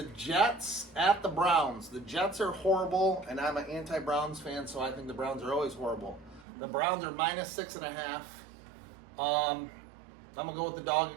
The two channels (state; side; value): drops out; left; at 6.5 s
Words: Jets at the Browns. The Jets are horrible, and I'm an anti-Browns fan, so I think the Browns are always horrible. The Browns are minus 6.5. I'm going to go with the dog